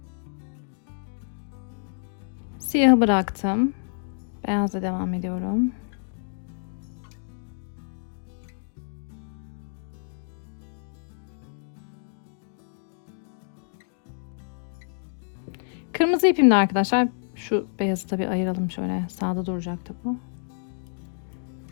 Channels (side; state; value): right; silent; digital silence